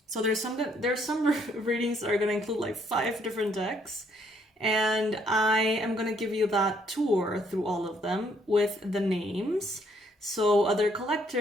So there's some readings that are going to include like 5 different decks. And I am going to give you that tour through all of them with the names. So other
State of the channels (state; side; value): normal; both; correlation 0.68